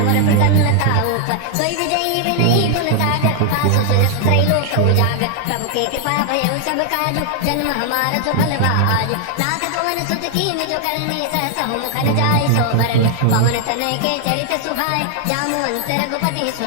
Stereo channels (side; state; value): both; different; correlation 0.00